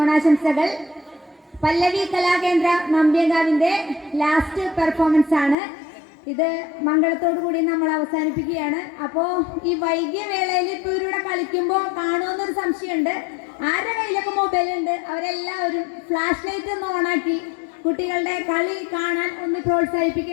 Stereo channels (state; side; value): drops out; right; at 5.6 s